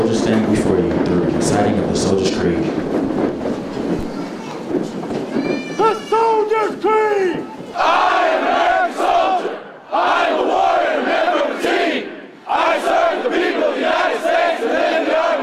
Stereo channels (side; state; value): both; identical; correlation 1.00